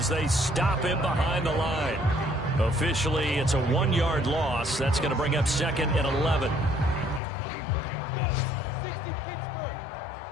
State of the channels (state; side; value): drops out; right; at 7.2 s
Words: they stop him behind the line. Officially, it's a 1-yard loss. That's going to bring up second and 11.